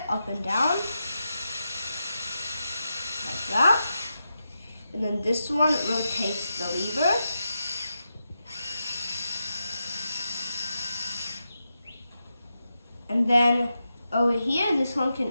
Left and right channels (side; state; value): both; inverted; correlation -0.87